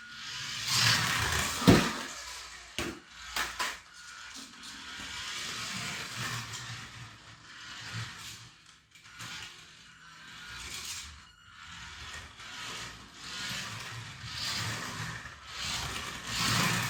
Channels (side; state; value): both; identical; correlation 1.00